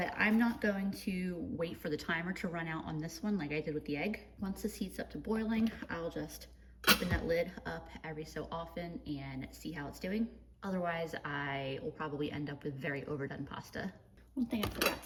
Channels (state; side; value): identical; both; correlation 1.00